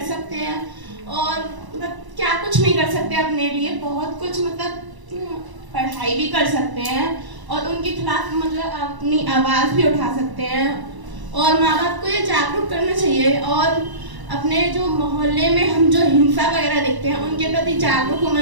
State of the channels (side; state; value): left; late; 1.0 ms